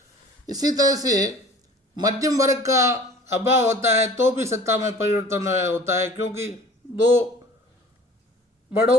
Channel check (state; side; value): normal; both; correlation 0.46